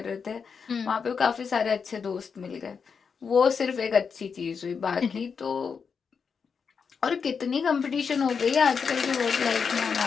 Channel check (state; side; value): quieter; right; 6.0 dB